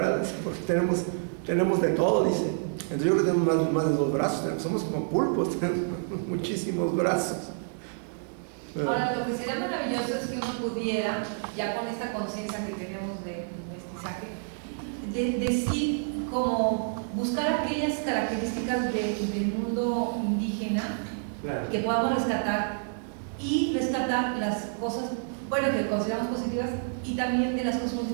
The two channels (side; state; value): left; silent; digital silence